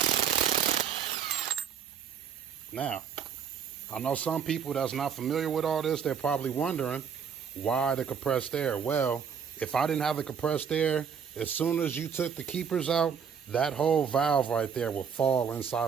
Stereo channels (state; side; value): quieter; left; 7.2 dB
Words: Now, I know some people that's not familiar with all this, they're probably wondering why the compressed air. Well, if I didn't have the compressed air, as soon as you took the keepers out, that whole valve right there will fall